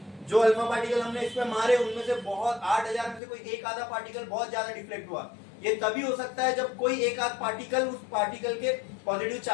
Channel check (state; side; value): drops out; right; at 3.2 s